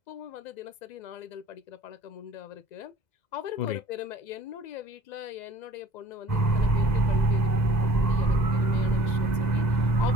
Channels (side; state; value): right; late; 2.0 ms